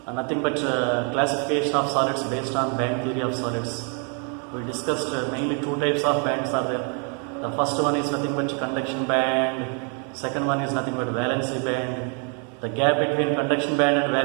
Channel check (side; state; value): left; quieter; 39.3 dB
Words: nothing but classification of solids based on band theory of solids. We discussed mainly two types of bands are there. The first one is nothing but conduction band, second one is nothing but valency band. The gap between conduction band and